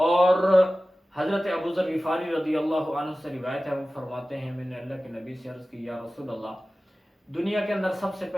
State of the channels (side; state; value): both; normal; correlation 0.96